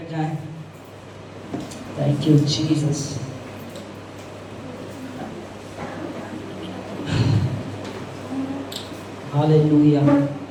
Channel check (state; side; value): identical; both; correlation 1.00